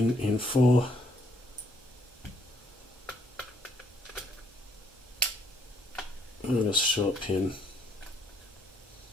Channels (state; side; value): normal; both; correlation 0.69